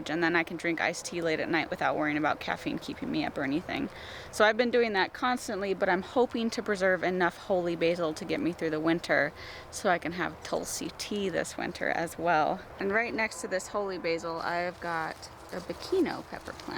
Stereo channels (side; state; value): both; identical; correlation 1.00